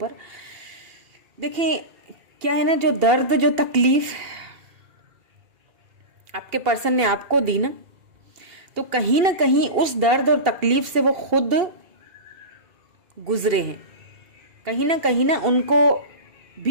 देखें क्या है ना, जो दर्द, जो तकलीफ आपके पर्सन ने आपको दी ना, तो कहीं ना कहीं उस दर्द और तकलीफ से वो खुद गुजरे हैं, कहीं ना उनको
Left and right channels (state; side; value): late; left; 2.7 ms